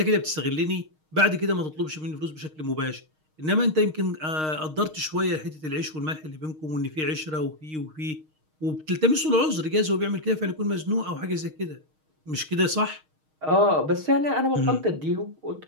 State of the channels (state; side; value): late; left; 6.4 ms